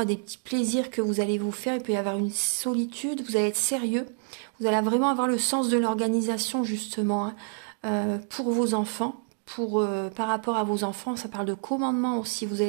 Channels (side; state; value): left; silent; 59 dB below the other